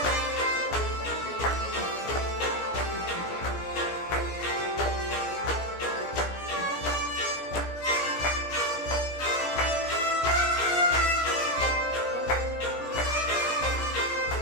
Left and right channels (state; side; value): late; right; 17 ms